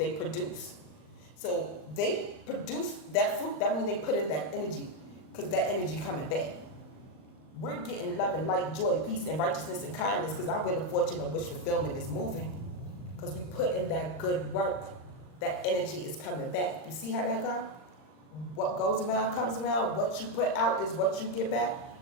produce. So they produce that fruit, that means they put in that energy, because that energy coming back. We're getting love and light, joy, peace, and righteousness and kindness, because our wheel of fortune of wish fulfillment is moving. Because we put in that good work, that energy is coming back. You see how that goes? What goes around comes around. What you put out is what you get back.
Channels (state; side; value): late; right; 39 ms